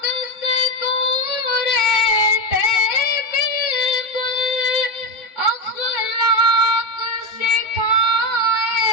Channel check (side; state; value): right; late; 3.6 ms